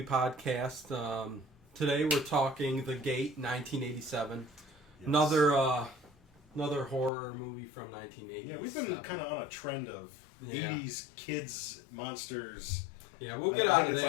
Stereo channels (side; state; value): right; drops out; at 7.1 s